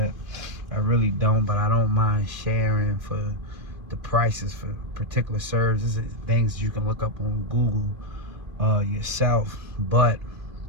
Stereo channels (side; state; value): left; late; 2.5 ms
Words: I really don't, but I don't mind sharing for the prices for particular services, things you can look up on Google yourself. But